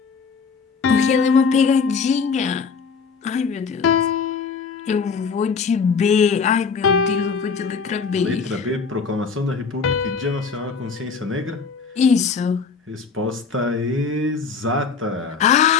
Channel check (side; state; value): right; quieter; 5.4 dB